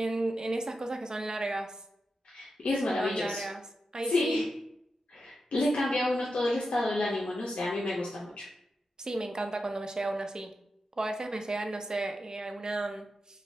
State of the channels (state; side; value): normal; both; correlation 0.89